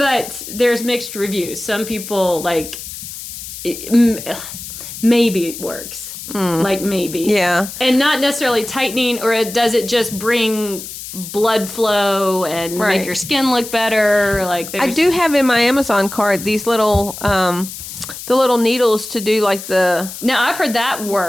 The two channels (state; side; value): noise; left; hiss, 11 dB below the sound